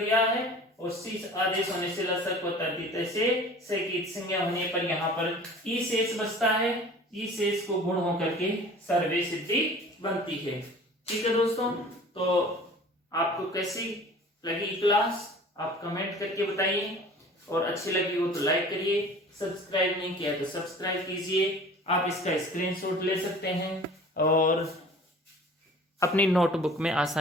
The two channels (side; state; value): both; normal; correlation 0.45